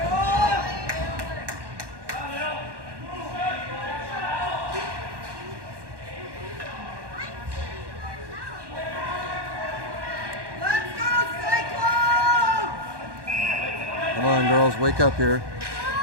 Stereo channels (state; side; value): late; left; 1.1 ms